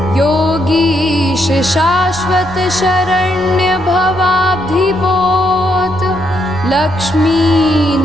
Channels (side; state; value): right; noise; hum, 18 dB below the sound